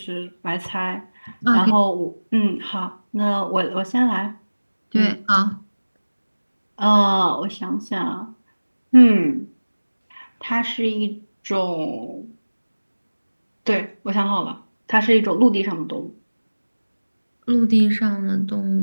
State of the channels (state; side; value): inverted; both; correlation -1.00